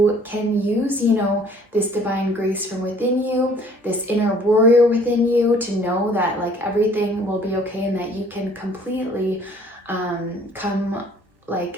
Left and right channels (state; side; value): normal; both; correlation 0.56